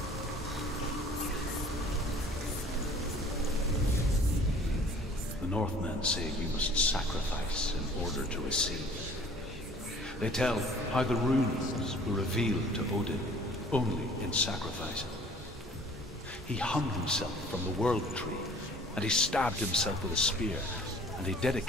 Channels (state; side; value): normal; both; correlation 0.51